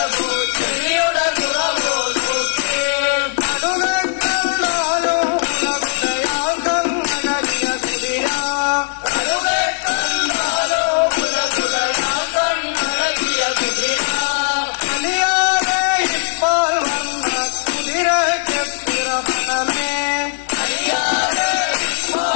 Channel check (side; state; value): right; silent; 67 dB below the other